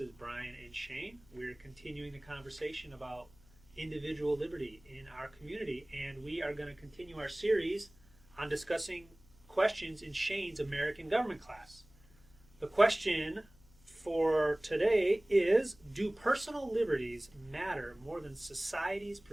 Brian and Shane. We're continuing the conversation about individual liberty in our community, and we are going to continue our series on discussing questions in Shane's American government class. The question for today is, do personal liberties matter more than society's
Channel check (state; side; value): noise; left; hum, 27 dB below the sound